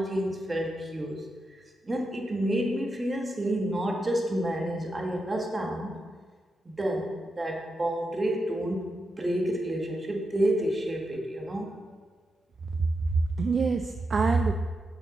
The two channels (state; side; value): normal; both; correlation 0.87